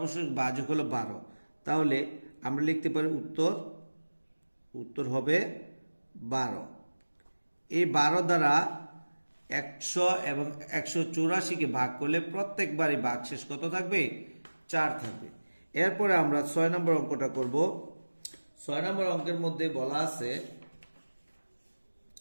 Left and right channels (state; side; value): inverted; both; correlation -1.00